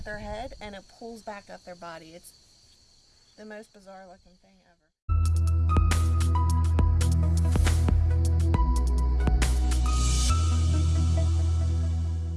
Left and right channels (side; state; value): both; identical; correlation 1.00